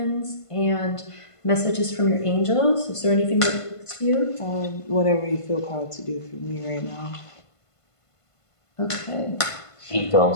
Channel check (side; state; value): right; late; 1.5 ms